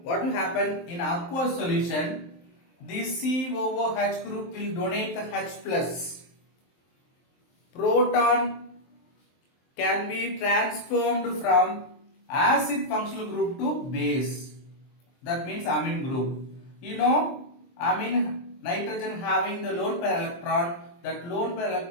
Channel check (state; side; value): late; right; 23 ms